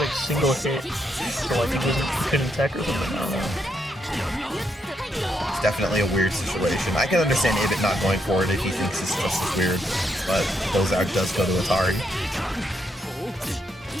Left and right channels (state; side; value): normal; both; correlation 0.77